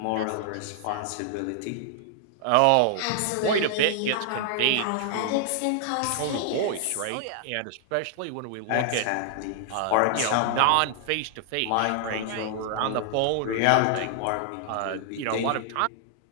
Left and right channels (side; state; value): both; different; correlation -0.01